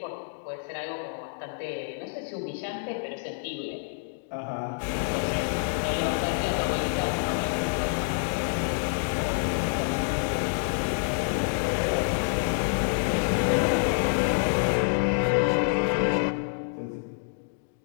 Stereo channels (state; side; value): silent; right; digital silence